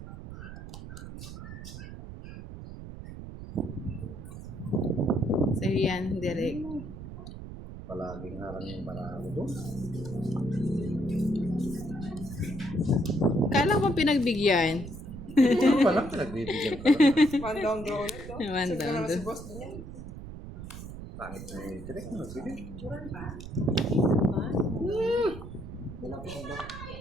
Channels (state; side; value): noise; right; rumble, 11 dB below the sound